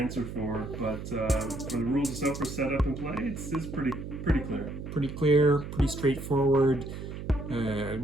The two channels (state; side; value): noise; right; hum, 9 dB below the sound